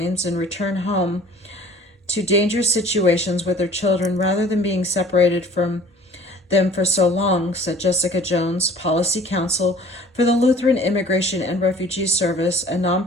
and return home to dangerous situations with their children rather than being separated from them for so long, said Jessica Jones, policy counsel for the Lutheran Immigration and Refugee Service, a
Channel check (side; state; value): both; normal; correlation 0.49